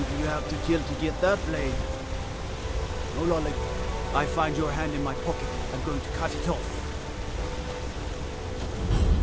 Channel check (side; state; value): both; identical; correlation 1.00